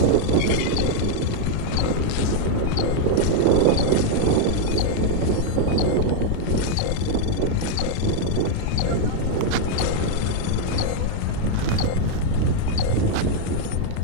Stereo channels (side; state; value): both; different; correlation 0.00